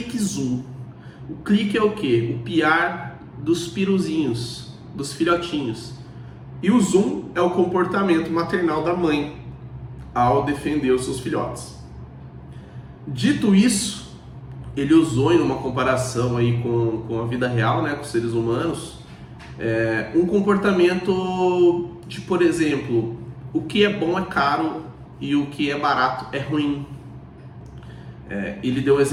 zoom. O clique é o quê? O piar dos piruzinhos, dos filhotinhos. E o zoom é o comportamento maternal da mãe ao defender os seus filhotes. Dito isso, ele usou em uma comparação aí com a vida real, né, com os seres humanos, um comportamento de, por exemplo, o que é bom é caro e o que é barato é ruim. Ele deu o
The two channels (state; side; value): identical; both; correlation 1.00